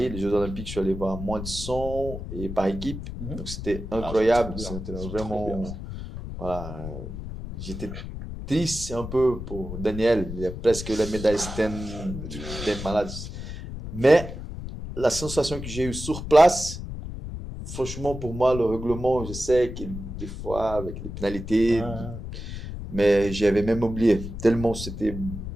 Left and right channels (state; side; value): noise; left; rumble, 8 dB below the sound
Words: les Jeux Olympiques, je suis allé voir moins de 100 et par équipe. Mhm. Donc, c'était Ah, incroyable. c'est trop bien. C'était C'est trop vraiment. bien. Voilà. J'étais triste un peu pour Daniel. Il a presque la médaille, c'était des malades. Mais la sensation que j'ai eue sur place, franchement, pour moi, le règlement, je sais que des fois, avec les pénalités, Ouais. mais j'avais même oublié. Tellement c'était